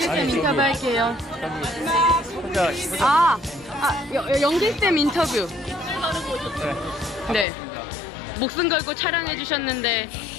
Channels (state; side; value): drops out; right; at 7.5 s